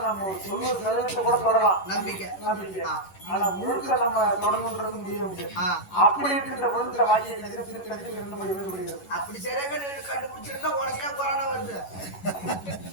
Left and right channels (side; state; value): right; late; 11 ms